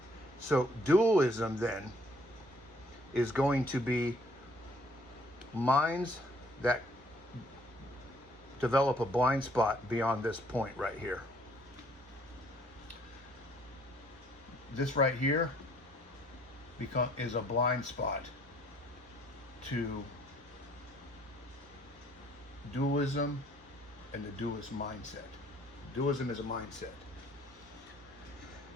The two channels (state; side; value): normal; both; correlation 0.61